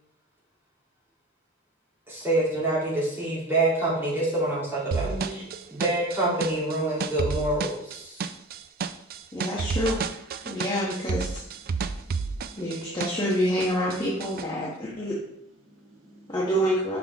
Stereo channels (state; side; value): normal; both; correlation 0.42